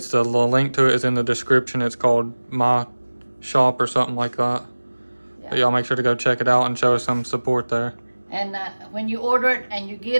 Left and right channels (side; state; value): both; inverted; correlation -1.00